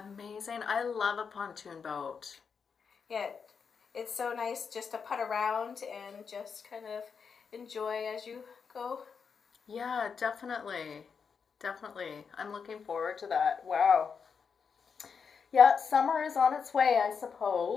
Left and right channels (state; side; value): quieter; right; 6.1 dB